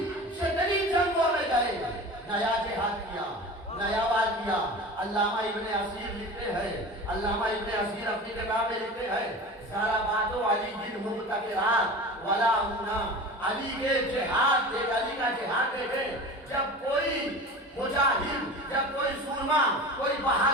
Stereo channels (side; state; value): both; normal; correlation 0.34